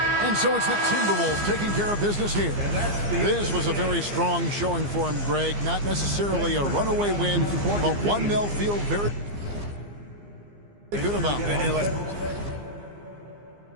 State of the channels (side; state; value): left; late; 15 ms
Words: And so it's the Timberwolves taking care of business here. This was a very strong showing for him, Greg. Not necessarily a runaway win, but one they'll feel very good about.